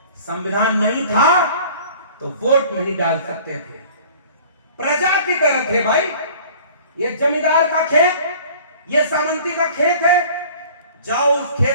संविधान नहीं था तो वोट नहीं डाल सकते थे। प्रजा की तरह थे भाई। ये जमींदार का खेत, ये सामंती का खेत है, जाओ उस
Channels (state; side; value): inverted; both; correlation -0.47